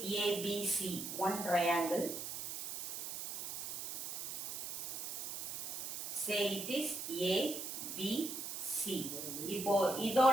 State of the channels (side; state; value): right; noise; hiss, 5 dB below the sound